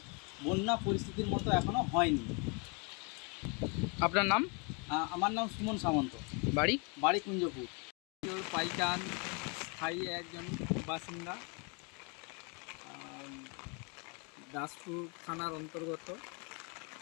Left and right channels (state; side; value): quieter; right; 33.7 dB